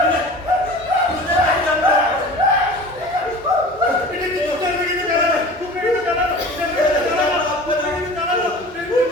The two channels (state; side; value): normal; both; correlation 0.39